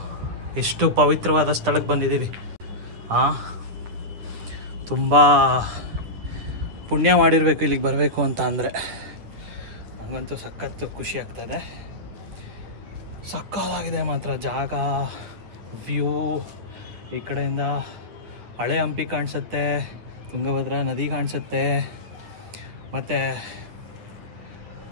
ಎಷ್ಟು ಪವಿತ್ರವಾದ ಸ್ಥಳಕ್ಕೆ ಬಂದಿದ್ದೀವಿ. ತುಂಬ ಪುಣ್ಯ ಮಾಡಿರಬೇಕು ಇಲ್ಲಿಗೆ ಬರಬೇಕು ಅಂತ ಅಂದರೆ. ನನಗಂತೂ ಸಖತ್ತು ಖುಷಿ ಆಗ್ತದೆ. ಸಕ್ಕತ್ತಾಗಿದೆ ಮಾತ್ರ ಜಾಗ, ವ್ಯೂ. ಈ ಕಡೆಯಿಂದ ಹಳೆ ಹಂಪಿ ಕಾಣಿಸುತ್ತೆ, ತುಂಗಭದ್ರಾ ನದಿ ಕಾಣಿಸುತ್ತೆ, ಮತ್ತು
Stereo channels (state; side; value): late; left; 9.8 ms